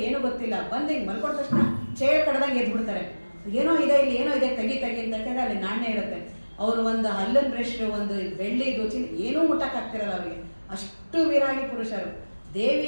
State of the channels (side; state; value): both; inverted; correlation -1.00